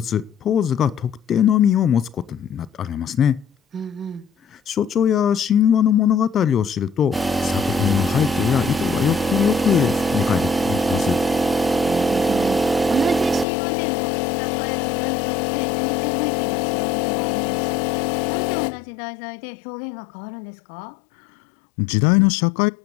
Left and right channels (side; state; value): right; drops out; at 13.5 s